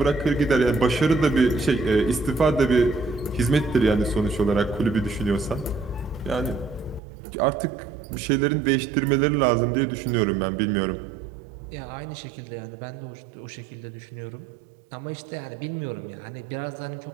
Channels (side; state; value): left; drops out; at 7.0 s